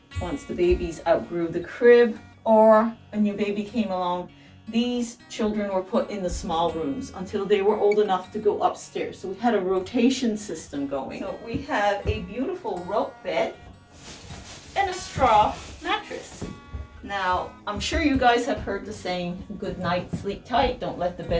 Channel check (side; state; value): both; identical; correlation 1.00